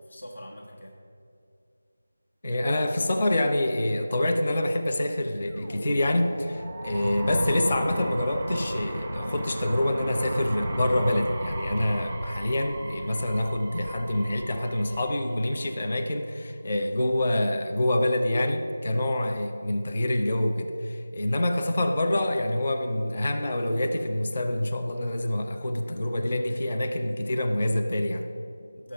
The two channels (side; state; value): both; inverted; correlation -0.94